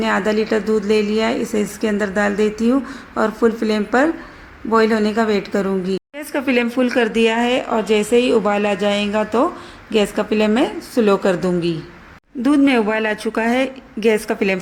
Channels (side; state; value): both; identical; correlation 1.00